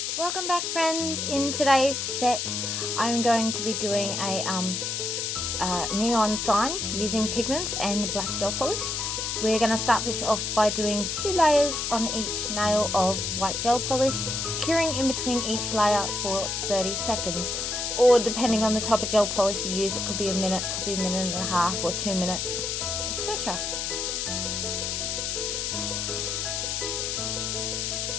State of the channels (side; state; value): left; noise; hiss, 2 dB below the sound